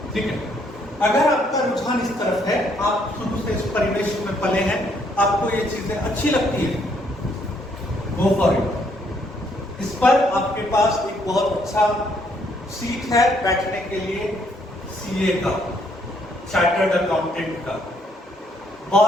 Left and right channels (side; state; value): both; normal; correlation 0.69